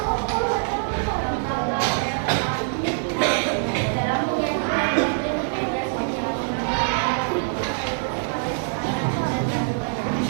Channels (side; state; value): left; silent; digital silence